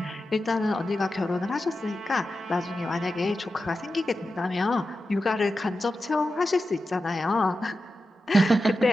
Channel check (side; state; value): both; normal; correlation 0.91